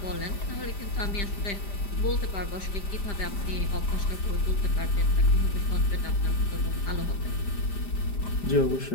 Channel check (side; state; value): right; late; 5.0 ms